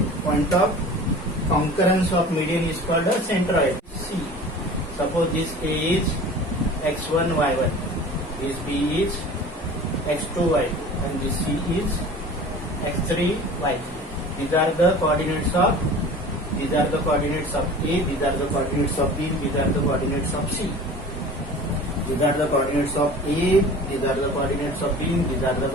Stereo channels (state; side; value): normal; both; correlation 0.40